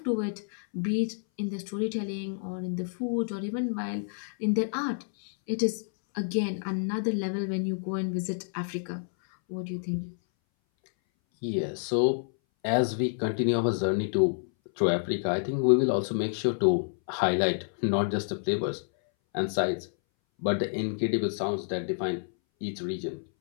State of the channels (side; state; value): right; silent; 59 dB below the other